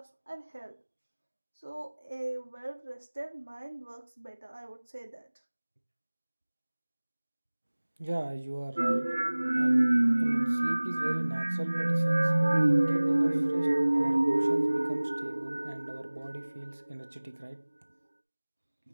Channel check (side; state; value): both; inverted; correlation -1.00